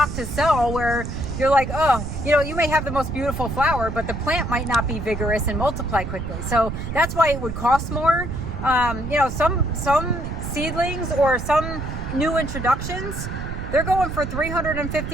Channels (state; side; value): noise; right; rumble, 6 dB below the sound